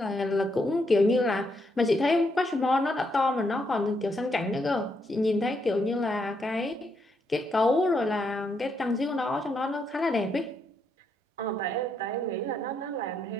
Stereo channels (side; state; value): both; normal; correlation 0.78